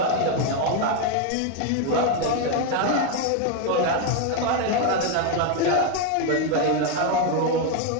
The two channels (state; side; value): different; both; correlation 0.01